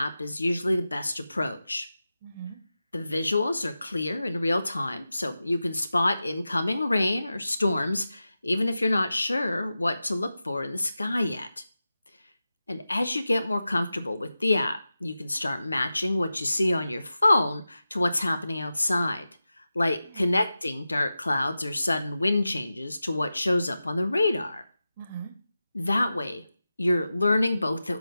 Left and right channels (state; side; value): inverted; both; correlation -0.93